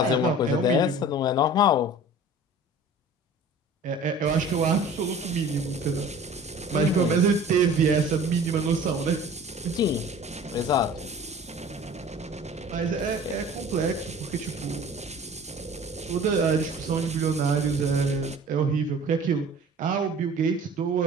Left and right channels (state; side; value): normal; both; correlation 0.44